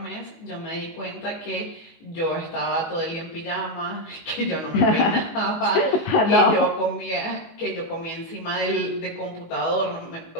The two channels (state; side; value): late; right; 18 ms